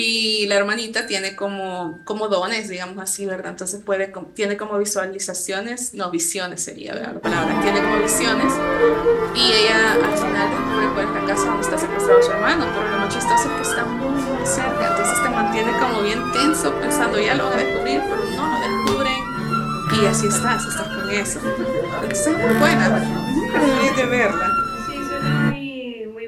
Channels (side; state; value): both; identical; correlation 1.00